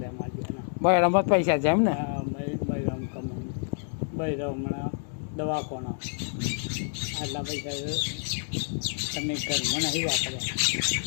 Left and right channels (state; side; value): silent; right; digital silence